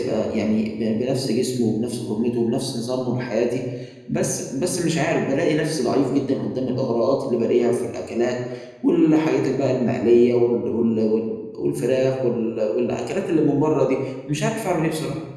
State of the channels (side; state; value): both; identical; correlation 1.00